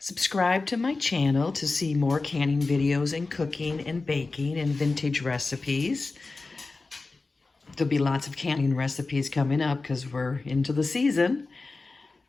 to my channel to see more canning videos and cooking and baking and vintage recipes. There'll be lots of canning recipes coming up because we're into the season.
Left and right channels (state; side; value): quieter; right; 3.7 dB